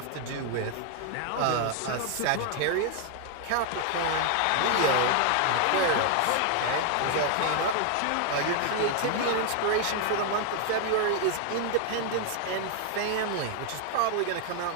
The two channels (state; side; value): different; both; correlation 0.00